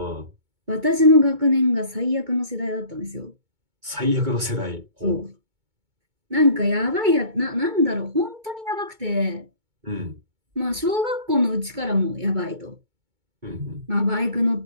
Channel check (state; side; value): late; left; 2.2 ms